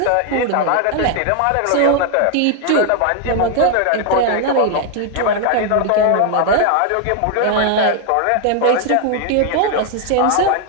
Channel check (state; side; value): different; both; correlation 0.00